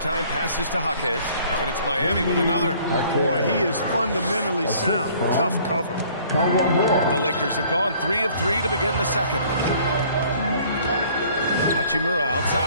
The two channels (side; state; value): both; inverted; correlation -0.56